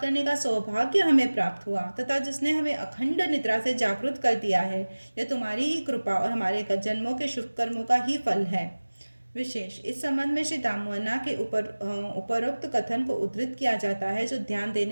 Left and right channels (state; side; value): inverted; both; correlation -1.00